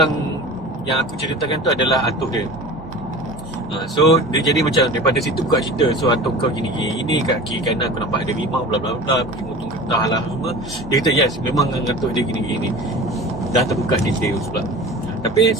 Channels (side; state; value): both; normal; correlation 0.37